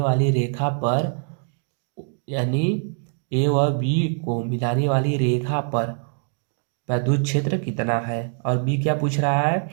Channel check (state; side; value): silent; left; 56 dB below the other